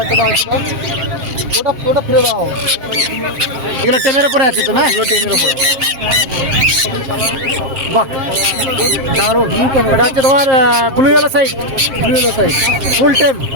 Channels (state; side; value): late; left; 7.5 ms